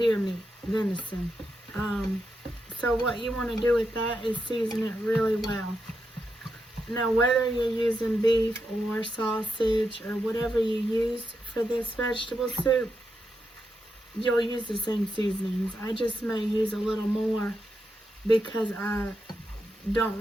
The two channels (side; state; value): both; normal; correlation 0.85